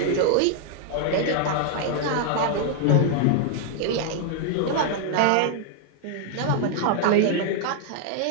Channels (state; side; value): different; both; correlation 0.00